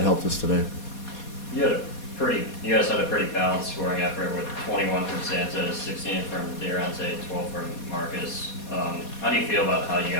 helped us today. You guys had a pretty balanced scoring effort with 21 from Santos, 16 from Durante, 12 from Marcus. How do you feel about how you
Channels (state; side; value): late; right; 4.2 ms